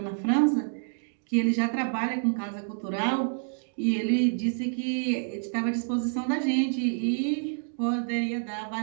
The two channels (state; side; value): silent; left; digital silence